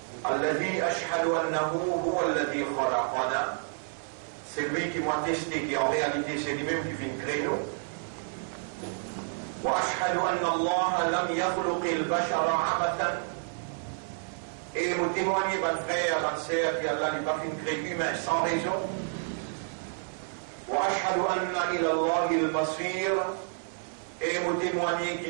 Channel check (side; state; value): left; silent; 58 dB below the other